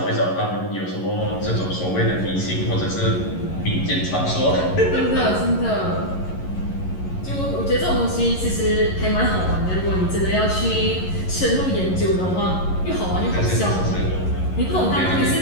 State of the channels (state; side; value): late; right; 11 ms